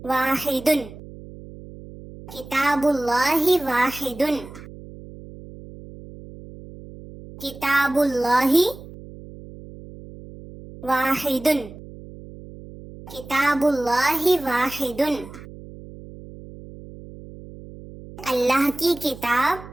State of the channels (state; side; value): noise; right; hum, 16 dB below the sound